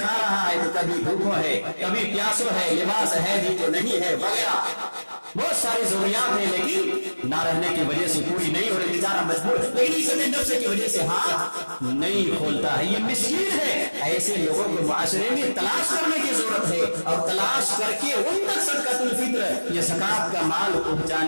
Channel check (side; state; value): both; inverted; correlation -1.00